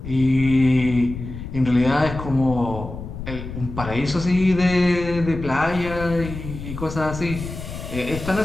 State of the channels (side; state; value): left; noise; rumble, 9 dB below the sound